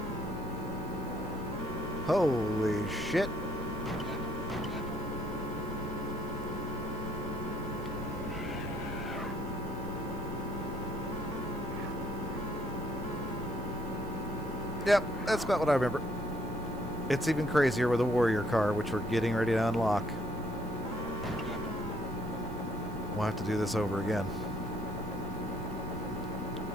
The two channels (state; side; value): noise; right; hiss, 24 dB below the sound